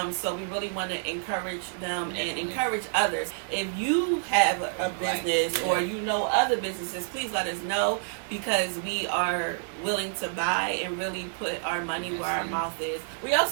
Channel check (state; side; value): silent; left; digital silence